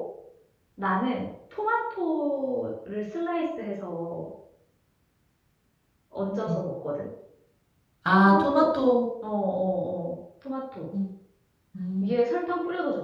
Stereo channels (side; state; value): both; identical; correlation 1.00